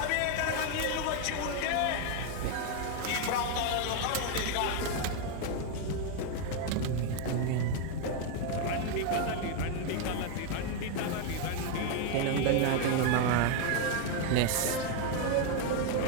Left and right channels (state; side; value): different; both; correlation 0.01